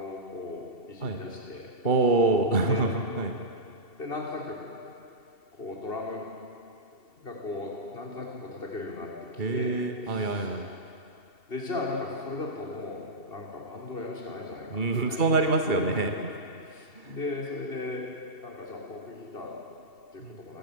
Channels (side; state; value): right; late; 2.7 ms